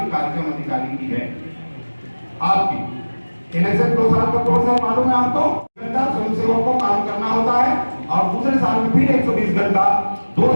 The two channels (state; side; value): inverted; both; correlation -1.00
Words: कार्यक्रम अधिकारी की है आपकी। इलेक्शन 2 साल का कोर्स है, मालूम है आपको, घंटा स्वयं सेवकों को काम करना होता है, और दूसरे साल में फिर 120 घंटा, 2